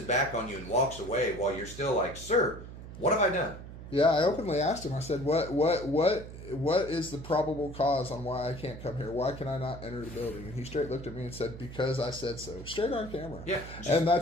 back on you and walks away while you're still like, sir, what have I done? Yeah, I openly asked him. I said, "What is the probable cause on why I can't come here? Why can I not enter the building?" And he straight looked at me and said, "Because I said so." Straight on camera. Yeah. And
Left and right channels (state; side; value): noise; right; hum, 13 dB below the sound